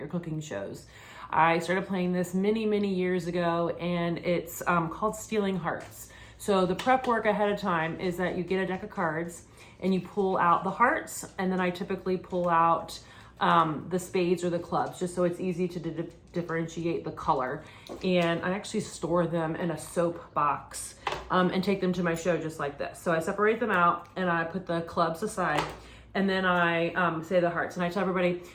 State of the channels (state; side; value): identical; both; correlation 1.00